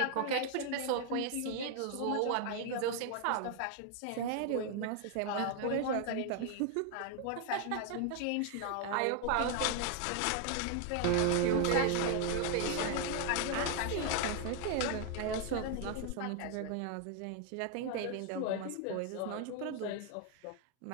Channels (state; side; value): different; both; correlation 0.01